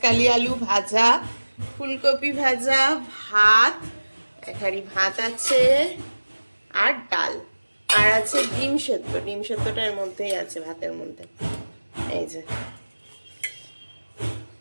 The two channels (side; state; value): both; inverted; correlation -1.00